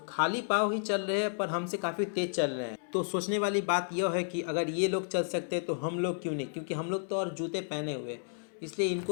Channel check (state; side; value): silent; right; digital silence